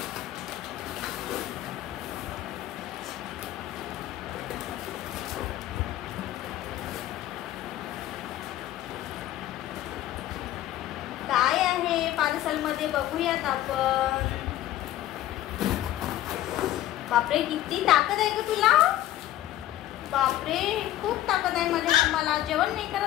काय आहे पार्सल मध्ये बघूयात आपण. बापरे, किती ताकद आहे ग तुला. बापरे, खूप ताकद आहे माझ्या. मला जेवण नाही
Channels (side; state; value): right; quieter; 13.8 dB